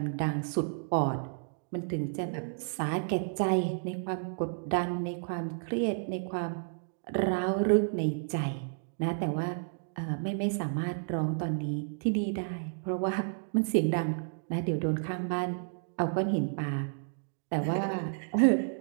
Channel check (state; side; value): silent; left; digital silence